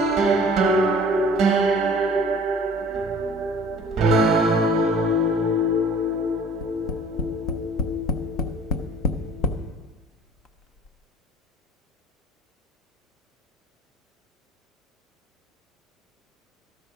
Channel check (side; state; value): both; normal; correlation 0.49